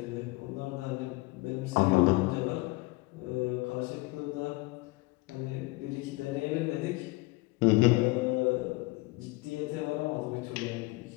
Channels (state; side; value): quieter; right; 23.0 dB